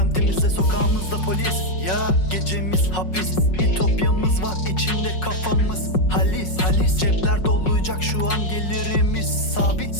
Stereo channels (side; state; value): right; late; 5.5 ms